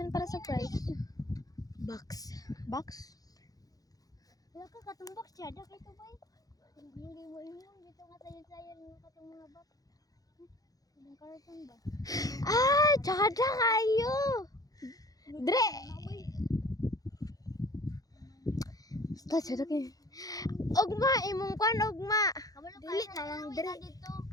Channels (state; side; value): late; right; 0.18 ms